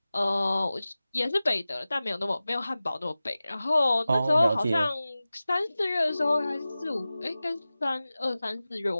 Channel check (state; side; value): inverted; both; correlation -0.96